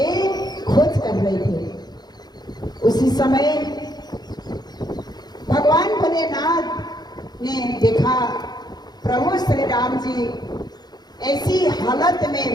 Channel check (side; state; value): right; late; 0.20 ms